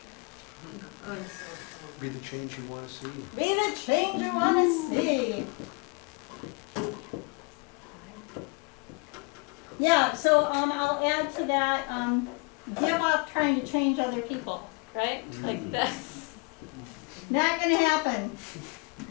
Go to social events. Be the change you want to see. Be the change you wanna see. Yeah, so, I'll add to that, give up trying to change other people, right? Like that's not gonna happen.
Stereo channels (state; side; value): quieter; right; 32.9 dB